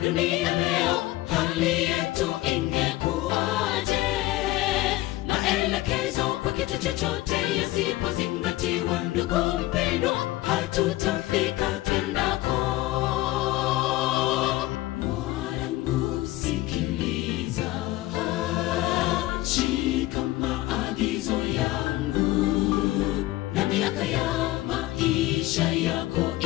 dunia leo, hali yetu ingekuwaje? Maelekezo kwa kitu chochote yasipozingatiwa, ndugu mpendwa, hatutafika twendako. Mwanangu sikiliza, shika maagizo yangu, na miaka ya maisha yako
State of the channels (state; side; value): quieter; right; 17.4 dB